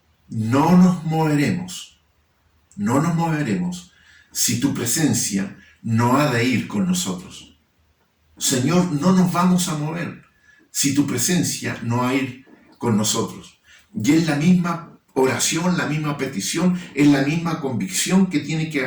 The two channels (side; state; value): both; identical; correlation 1.00